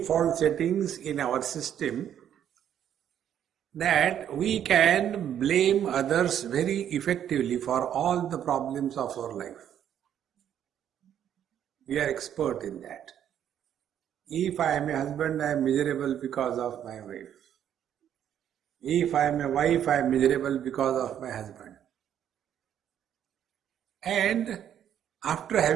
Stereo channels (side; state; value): left; quieter; 9.9 dB